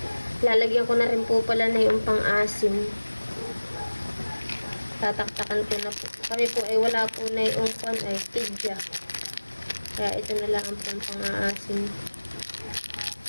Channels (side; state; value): both; inverted; correlation -1.00